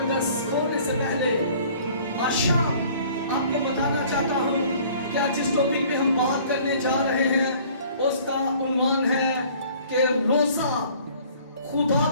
खोलने से पहले आज शाम आपको बताना चाहता हूँ कि आज जिस टॉपिक पे हम बात करने जा रहे हैं उसका उन्वान है कि रोजा खुदा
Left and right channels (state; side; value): inverted; both; correlation -0.53